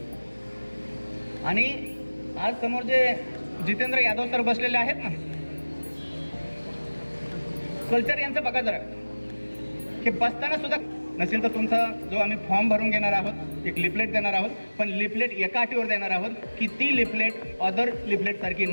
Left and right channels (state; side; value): inverted; both; correlation -1.00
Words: आणि आज समोर जे जितेंद्र यादव सर बसलेले आहेत ना, कल्चर यांचं बघा जरा, हे बसताना सुद्धा नसेल तर तुमचा जो आम्ही फॉर्म भरून घेणार आहोत, एक लिफलेट देणार आहोत, पण लिफलेट एका अटीवर देणार आहोत की ती लिफलेट अदर लिफलेट सारखी